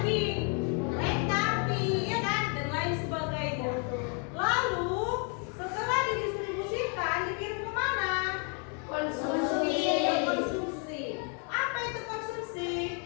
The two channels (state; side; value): quieter; right; 39.1 dB